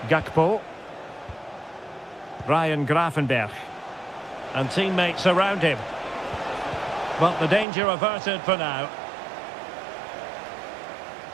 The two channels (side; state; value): left; drops out; at 7.7 s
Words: Gakpo. Ryan Gravenberch. And teammates around him. But the danger averted for now.